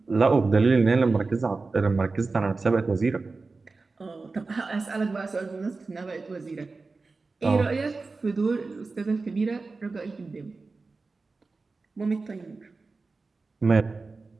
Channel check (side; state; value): left; quieter; 3.9 dB